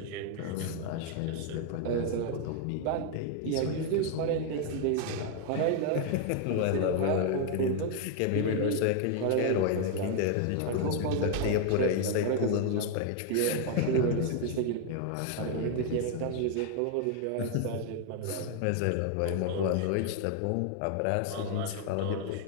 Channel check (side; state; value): both; different; correlation 0.00